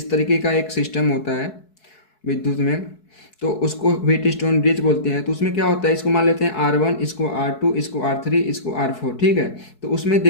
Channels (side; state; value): right; late; 4.6 ms